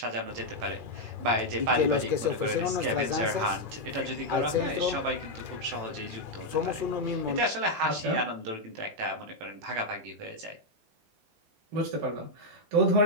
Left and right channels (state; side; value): late; left; 18 ms